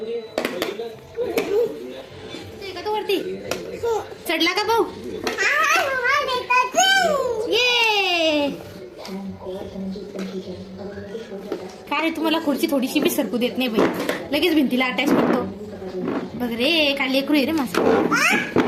का तू वरती चढला का भाऊ? ये काय रे, तुम्हाला खुर्ची थोडीशी बी सरकू देत नाही बाई. लगेच भिंतीला अटॅच करतो. बघ रे, काय लेकरू आहे रे माझं.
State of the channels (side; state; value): both; identical; correlation 1.00